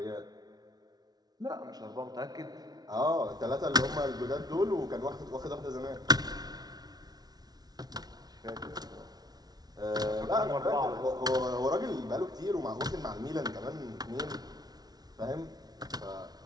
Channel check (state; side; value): late; left; 0.19 ms